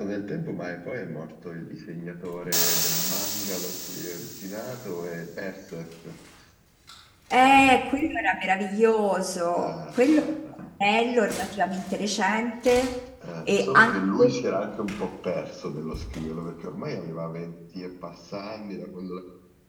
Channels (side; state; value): both; identical; correlation 1.00